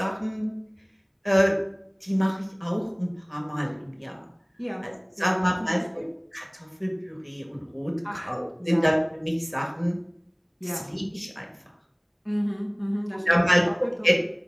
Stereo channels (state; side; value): identical; both; correlation 1.00